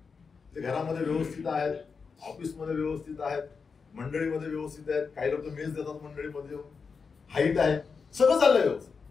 ते घरामध्ये व्यवस्थित आहेत, ऑफिसमध्ये व्यवस्थित आहेत, मंडळीमध्ये व्यवस्थित आहेत. काही लोक मेस देतात मंडळीमध्ये, हाईट आहे, सगळं चाललंय व्यवस्थित.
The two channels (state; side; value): quieter; right; 5.3 dB